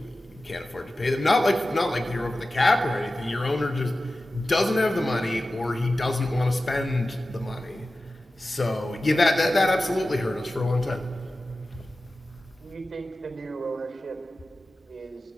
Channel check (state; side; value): normal; both; correlation 0.94